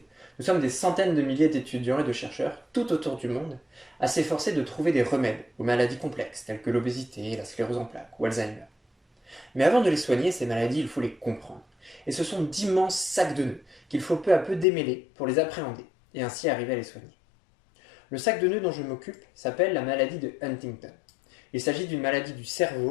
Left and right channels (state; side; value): drops out; right; at 14.7 s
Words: Nous sommes des centaines de milliers d'étudiants et de chercheurs, tout autour du monde, à s'efforcer de trouver des remèdes aux maladies complexes telles que l'obésité, la sclérose en plaques ou Alzheimer. Mais avant de les soigner, ces maladies, il faut les comprendre. Et ce sont d'immenses sacs de nœuds qu'il faut peu à peu démêler pour les appréhender et ainsi arriver à les soigner. Le sac de nœuds dont je m'occupe s'appelle la maladie de Huntington. Il s'agit d'une maladie du